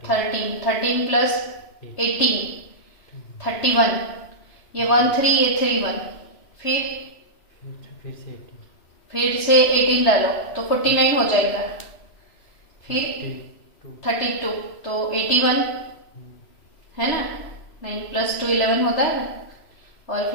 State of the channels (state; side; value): late; right; 3.0 ms